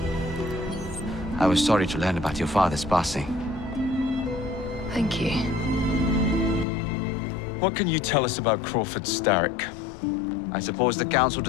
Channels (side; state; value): right; drops out; at 6.7 s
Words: I was sorry to learn about your father's passing. Thank you. What can you tell us about Crawford Starrick? I suppose the Council